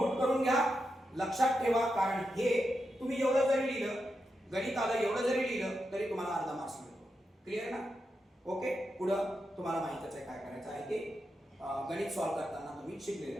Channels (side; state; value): both; normal; correlation 0.87